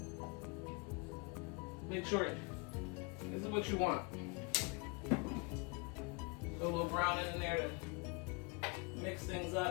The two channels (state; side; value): quieter; right; 31.4 dB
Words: Make sure this is what you want. Put a little browning in there to mix things